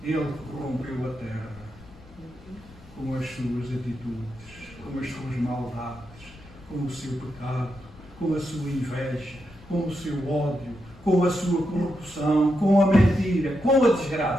ele corrompeu a terra com as suas atitudes, com as suas maldades, com o seu pecado, com a sua inveja, com o seu ódio, com a sua corrupção, com a mentira, com a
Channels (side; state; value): left; noise; rumble, 21 dB below the sound